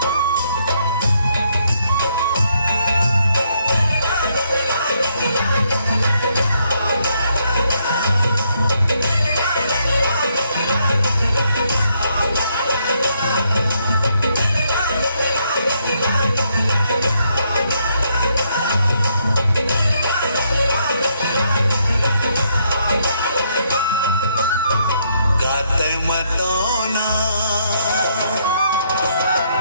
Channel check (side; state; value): both; inverted; correlation -0.73